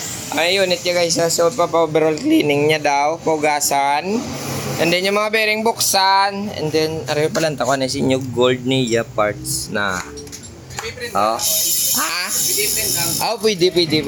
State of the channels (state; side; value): identical; both; correlation 1.00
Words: Ay unit ya guys, so overall cleaning niya daw, pugasan. And then yung mga bearing buksan, and then aray pala ta ko na si new gold niya parts na. Oh. Ha? Oh, pwede.